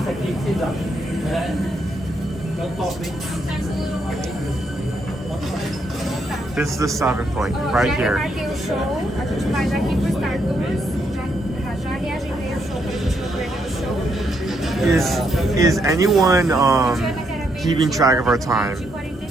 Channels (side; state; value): both; normal; correlation 0.76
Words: This is the stopping point, right here. Is anyone keeping track of our time?